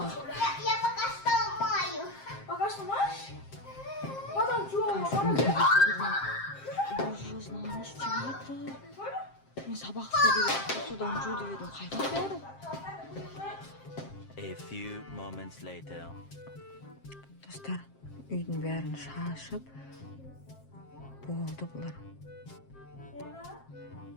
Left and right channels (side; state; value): right; late; 7.5 ms